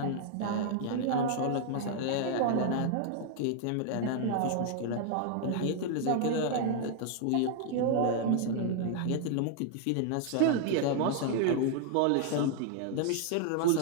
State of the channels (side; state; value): both; different; correlation 0.00